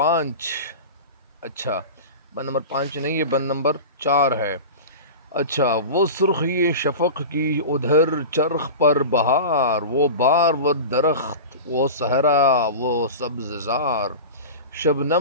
اچھا، بند نمبر 5 نہیں، یہ بند نمبر 4 ہے۔ اچھا، وہ سرخی شفق کی ادھر چرخ پر بہار، وہ بار و درخت، وہ صحرا، وہ سبز زار،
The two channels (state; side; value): inverted; both; correlation -0.30